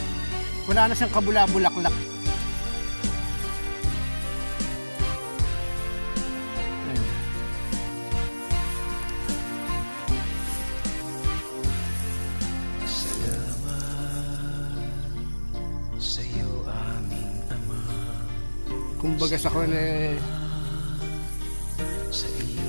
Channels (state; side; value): inverted; both; correlation -1.00